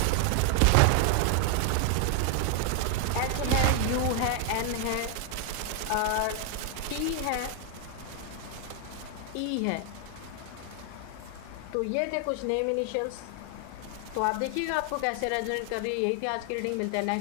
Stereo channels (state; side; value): different; both; correlation 0.00